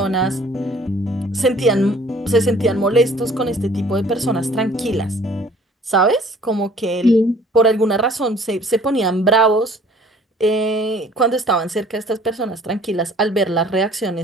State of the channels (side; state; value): both; normal; correlation 0.54